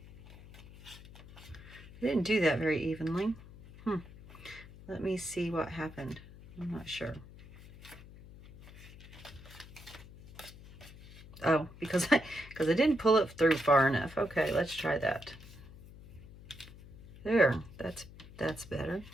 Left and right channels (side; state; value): left; noise; hum, 18 dB below the sound